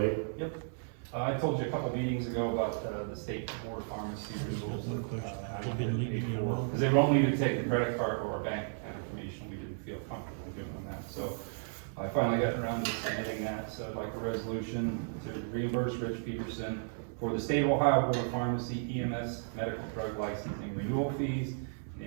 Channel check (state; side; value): silent; left; 55 dB below the other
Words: Yep. I told you a couple meetings ago about the state board of pharmacy rules. Because they won't need to take the credit card or our bank account information. We didn't feel comfortable doing that. So I finally got around to submitting that. So I'd like a resolution to reimburse Rich Peterson for the state of Ohio Board of Pharmacy EMS medical drug licensing renewal fees